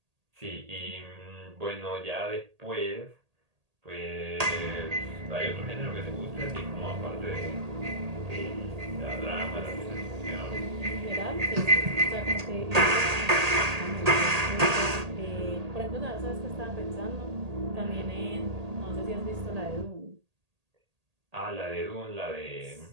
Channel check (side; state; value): left; late; 1.8 ms